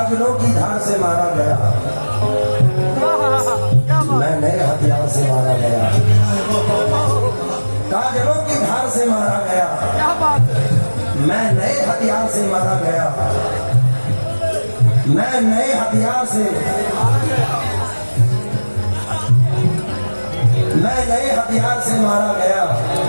की धार से मारा गया, मैं नए हथियार से मारा गया। काजलों की धार से मारा गया, मैं नए हथियार से मारा गया। मैं नए हथियार से, मैं नए हथियार से मारा गया।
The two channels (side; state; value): both; inverted; correlation -1.00